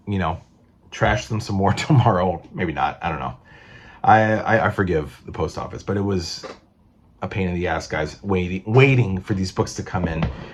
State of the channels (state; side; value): identical; both; correlation 1.00